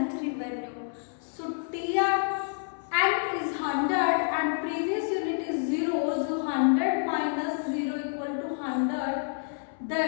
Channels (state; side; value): silent; right; 58 dB below the other